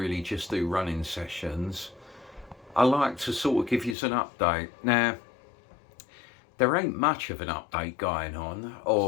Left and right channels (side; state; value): right; drops out; at 4.0 s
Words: just do running sessions. I like to sort of give you an update. Now, there ain't much of an update going on,